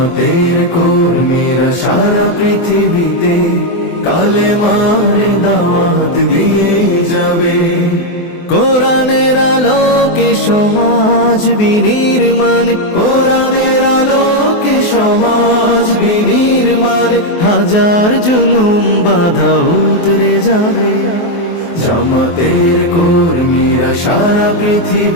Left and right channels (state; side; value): late; right; 24 ms